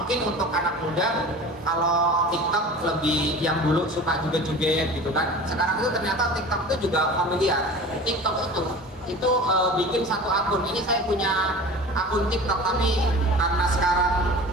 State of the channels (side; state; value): both; normal; correlation 0.38